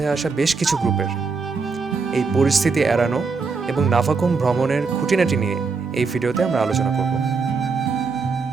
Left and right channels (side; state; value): left; quieter; 4.7 dB